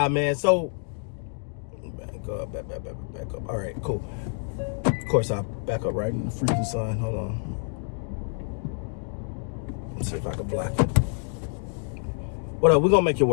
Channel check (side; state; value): right; silent; 60 dB below the other